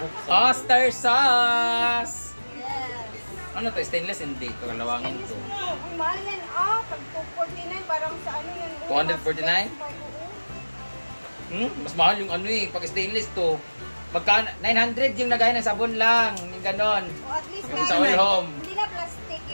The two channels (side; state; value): both; inverted; correlation -1.00